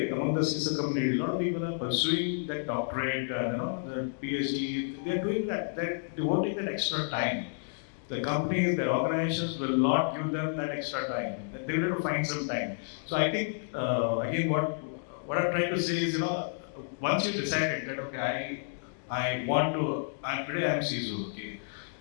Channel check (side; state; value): right; silent; digital silence